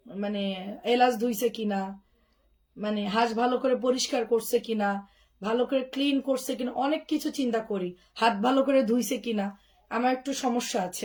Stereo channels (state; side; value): identical; both; correlation 1.00